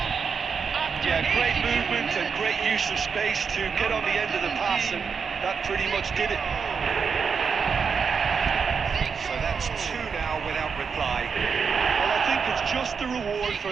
yeah, great movement and great use of space to get on the end of the pass, and that pretty much did it. So that's two now without reply. Well, I think it's just the reward for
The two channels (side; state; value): left; quieter; 5.9 dB